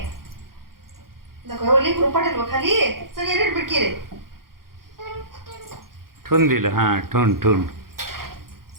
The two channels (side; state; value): left; late; 0.92 ms